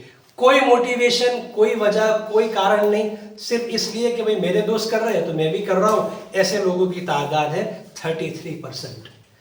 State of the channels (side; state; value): both; identical; correlation 1.00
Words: کوئی موٹیویشن، کوئی وجہ، کوئی کارن نہیں، صرف اس لیے کہ بھئی میرے دوست کر رہے ہیں تو میں بھی کر رہا ہوں. ایسے لوگوں کی تعداد ہے 33%.